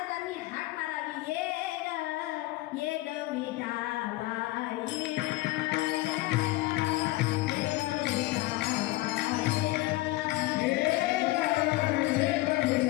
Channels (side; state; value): right; quieter; 19.4 dB